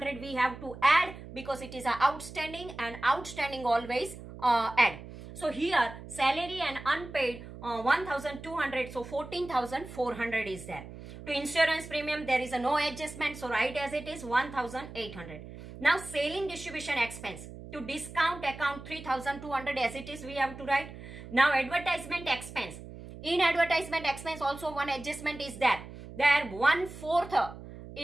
we have to add because it is a outstanding, and outstanding always add. So here salary and unpaid 1,200, so 14,400 is there. To insurance premium there is a no adjustment, so write as it is 1,800. Now selling distribution expense. To discount account 3,200 as it is we have to write. Now advertisement expense. In advertisement expense also one adjustment is there. There 1/4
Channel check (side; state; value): right; noise; hum, 14 dB below the sound